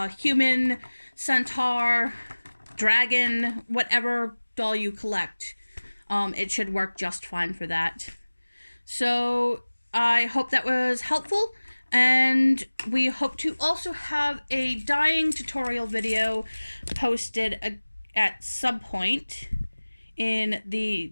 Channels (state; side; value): inverted; both; correlation -1.00